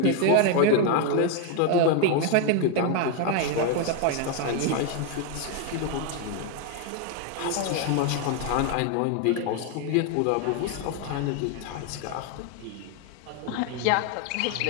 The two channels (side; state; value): both; different; correlation 0.01